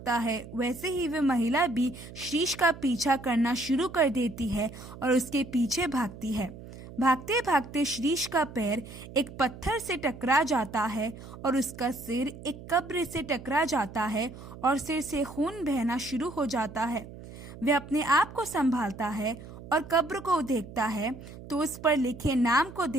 है वैसे ही वे महिला भी श्रीश का पीछा करना शुरू कर देती है और उसके पीछे भागती है। भागते भागते श्रीश का पैर एक पत्थर से टकरा जाता है और उसका सिर एक कब्र से टकरा जाता है और सिर से खून बहना शुरू हो जाता है। वह अपने आप को संभालता है और कब्र को देखता है तो उस पर लिखे नाम को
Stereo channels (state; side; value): noise; right; hum, 15 dB below the sound